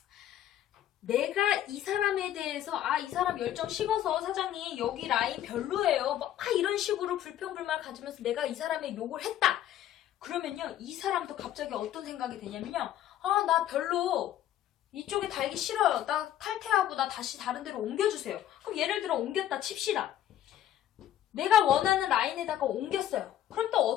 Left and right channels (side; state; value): right; quieter; 11.8 dB